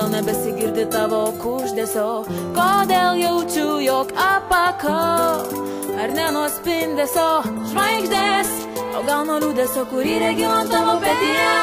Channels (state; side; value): identical; both; correlation 1.00